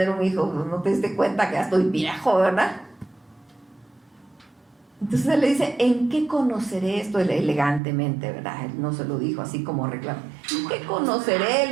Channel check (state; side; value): drops out; left; at 7.8 s